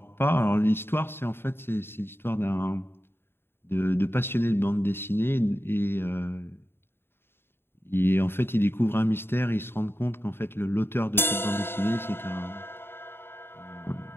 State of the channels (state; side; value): late; right; 0.11 ms